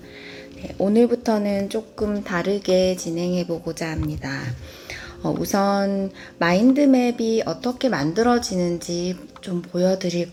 네, 오늘부터는 조금 다르게 진행해 보고자 합니다. 우선 마인드맵이 어떻게 만들어지는지 좀 보여드릴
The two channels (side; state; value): both; identical; correlation 1.00